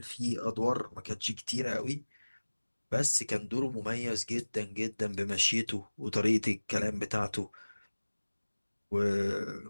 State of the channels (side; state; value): both; inverted; correlation -1.00